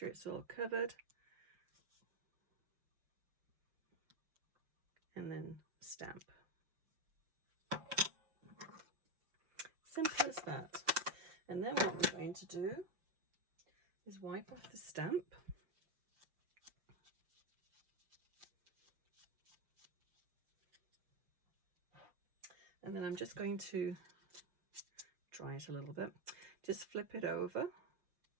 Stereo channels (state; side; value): late; left; 6.0 ms